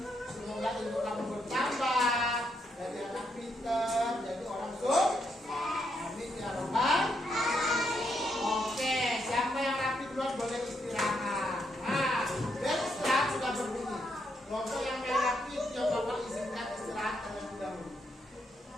Semoga ilmu kamu bertambah, dari anak pintar jadi orang sukses. Amin ya Rabbal. Oke, siapa yang rapi duluan boleh istirahat. Nah, dan istirahat sudah berdiri. Kelompok yang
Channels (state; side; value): normal; both; correlation 0.78